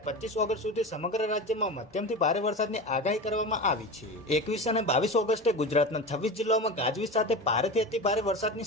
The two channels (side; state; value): both; normal; correlation 0.27